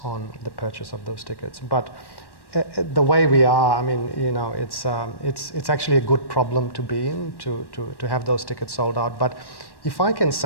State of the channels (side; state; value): right; late; 1.1 ms